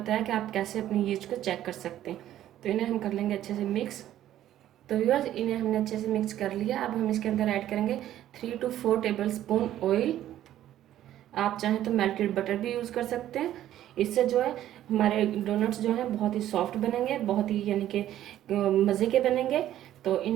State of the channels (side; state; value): left; quieter; 12.5 dB